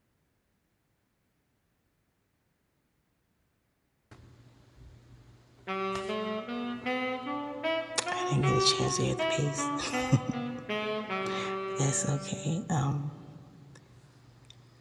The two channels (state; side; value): identical; both; correlation 1.00